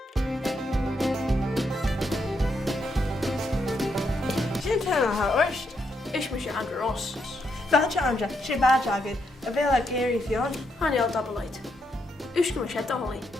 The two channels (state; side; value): normal; both; correlation 0.79